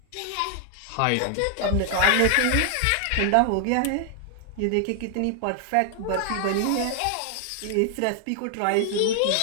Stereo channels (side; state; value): both; different; correlation 0.00